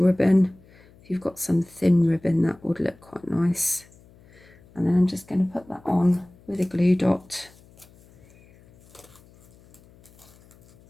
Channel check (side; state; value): left; noise; hum, 27 dB below the sound